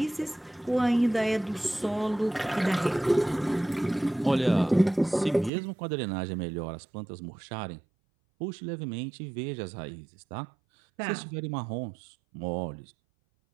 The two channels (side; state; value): left; drops out; at 5.5 s